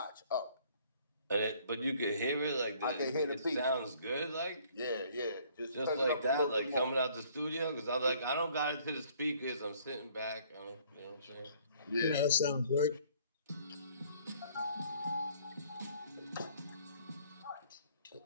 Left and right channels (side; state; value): both; inverted; correlation -0.59